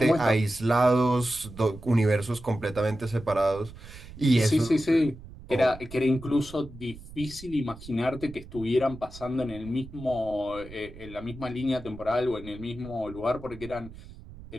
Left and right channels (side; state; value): right; noise; rumble, 16 dB below the sound